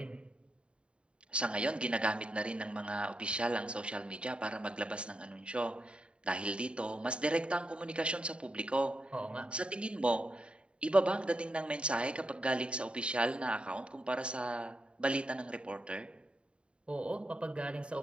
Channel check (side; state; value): left; late; 0.055 ms